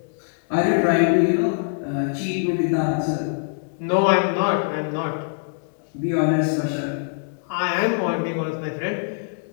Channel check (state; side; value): silent; right; digital silence